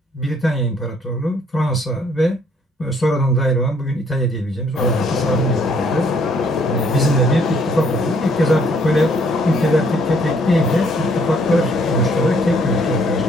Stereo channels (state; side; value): normal; both; correlation 0.65